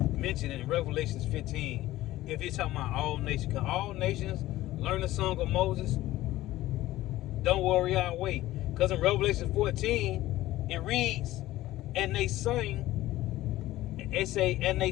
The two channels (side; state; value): right; quieter; 16.0 dB